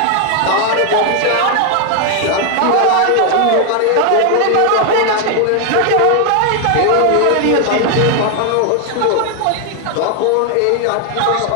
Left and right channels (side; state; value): both; different; correlation 0.00